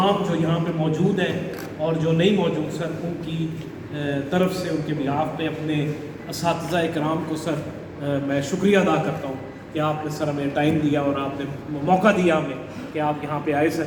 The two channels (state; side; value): identical; both; correlation 1.00